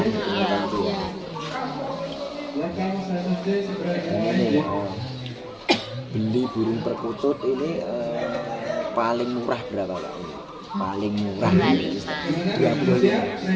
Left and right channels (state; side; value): identical; both; correlation 1.00